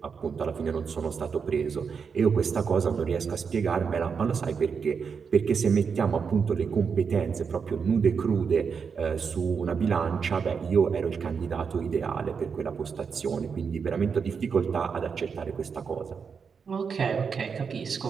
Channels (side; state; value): left; quieter; 6.0 dB